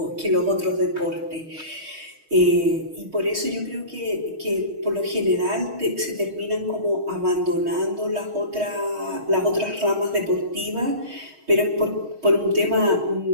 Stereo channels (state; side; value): late; left; 6.4 ms